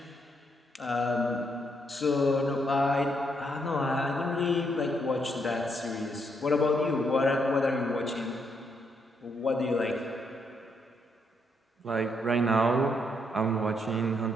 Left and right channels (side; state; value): both; normal; correlation 0.76